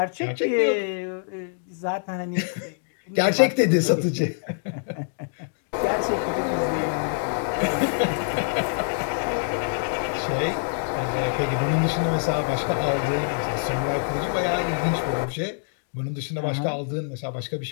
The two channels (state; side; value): silent; right; digital silence